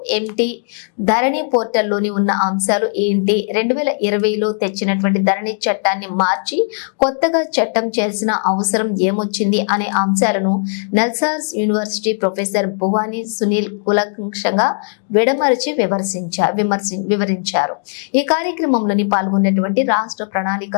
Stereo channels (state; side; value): silent; right; 58 dB below the other